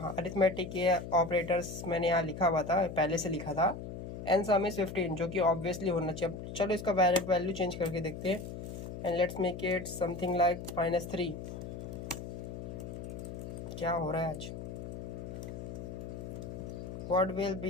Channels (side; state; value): left; noise; hum, 8 dB below the sound